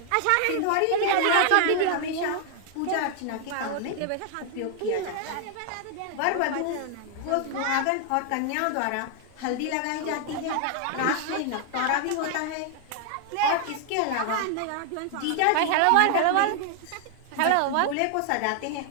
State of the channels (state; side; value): different; both; correlation 0.00